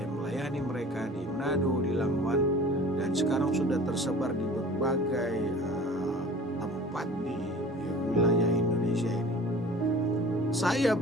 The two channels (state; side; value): normal; both; correlation 0.43